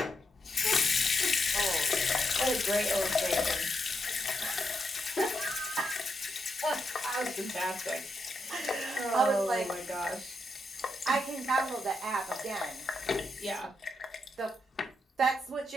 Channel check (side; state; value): both; normal; correlation 0.82